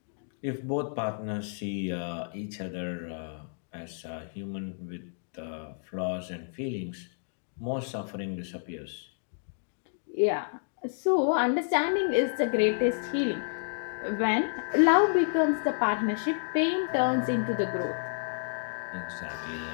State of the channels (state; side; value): silent; right; digital silence